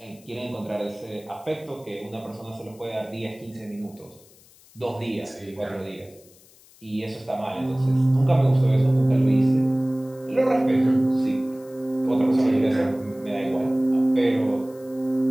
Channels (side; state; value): left; noise; hiss, 26 dB below the sound